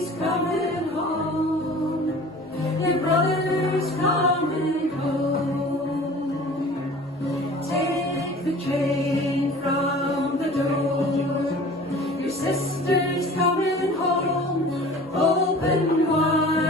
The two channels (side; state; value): both; normal; correlation 0.43